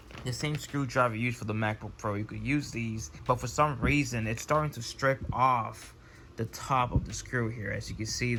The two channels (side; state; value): both; identical; correlation 1.00